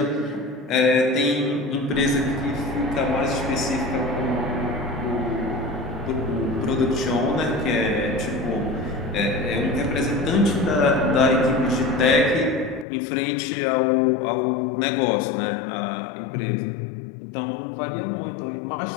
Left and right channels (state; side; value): drops out; right; at 12.9 s